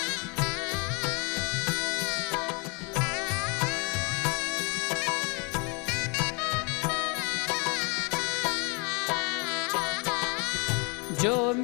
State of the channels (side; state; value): right; quieter; 31.1 dB